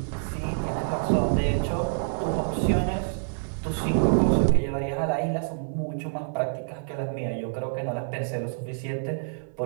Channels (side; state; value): left; silent; 60 dB below the other